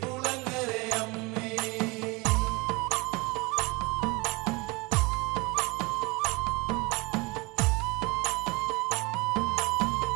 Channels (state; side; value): quieter; left; 26.0 dB